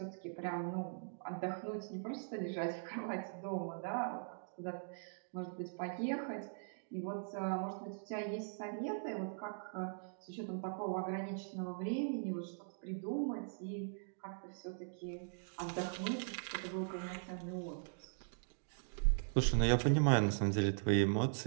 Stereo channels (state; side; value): silent; left; digital silence